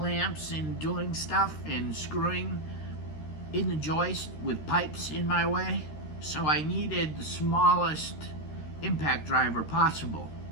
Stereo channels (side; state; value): right; late; 13 ms